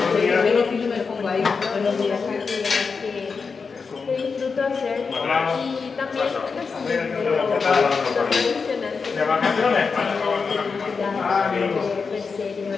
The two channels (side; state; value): right; quieter; 5.1 dB